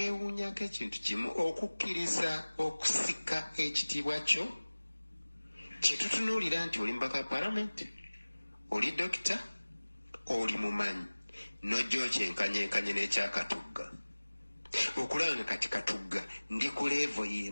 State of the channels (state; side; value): inverted; both; correlation -1.00